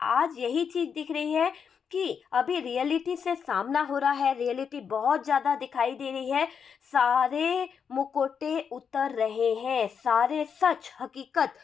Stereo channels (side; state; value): right; quieter; 6.8 dB